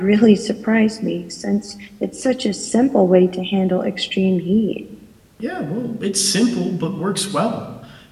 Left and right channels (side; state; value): both; identical; correlation 1.00